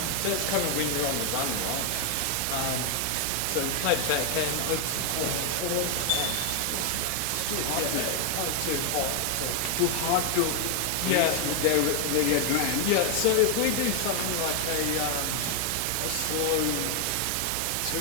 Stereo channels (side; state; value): both; different; correlation 0.00